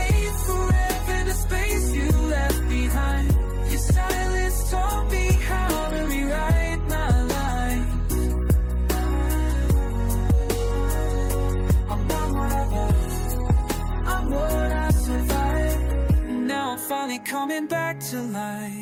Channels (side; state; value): both; identical; correlation 1.00